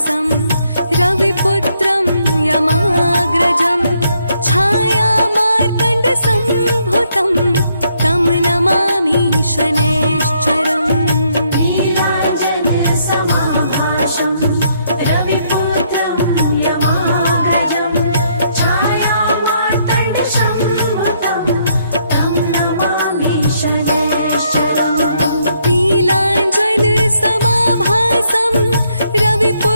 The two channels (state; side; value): inverted; both; correlation -0.72